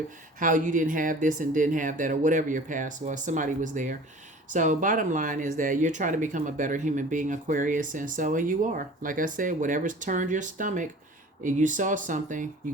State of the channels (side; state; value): both; normal; correlation 0.44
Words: how you didn't have this and didn't have that, or whatever your past was. Somebody was there. So bottom line is that you're trying to become a better human being, Aquarius, and you are. Like I said, whatever's turned your stomach, and you saw something, you